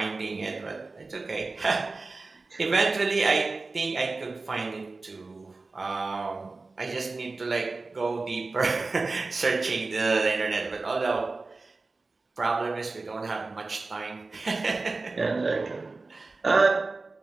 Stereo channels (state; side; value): quieter; left; 3.6 dB